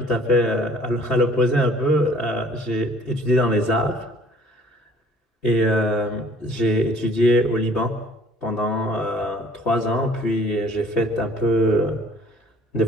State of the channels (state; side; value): normal; both; correlation 0.55